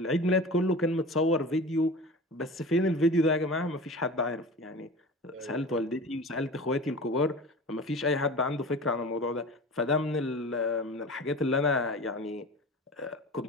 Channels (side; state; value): both; normal; correlation 0.35